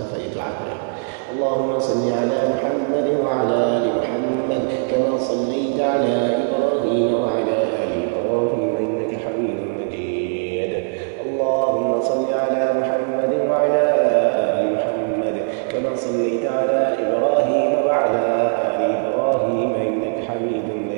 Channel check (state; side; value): silent; left; 65 dB below the other